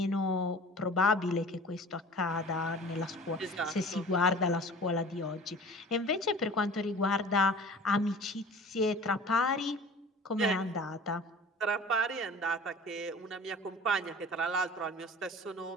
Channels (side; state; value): both; normal; correlation 0.42